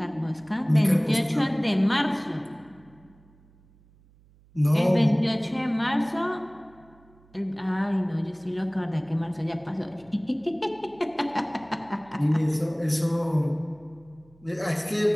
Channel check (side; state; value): right; noise; hum, 29 dB below the sound